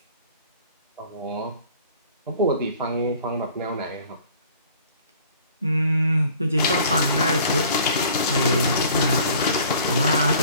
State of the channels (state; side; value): inverted; both; correlation -0.52